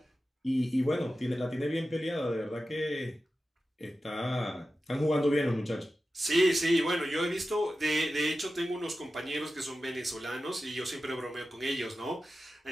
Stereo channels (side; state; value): both; normal; correlation 0.93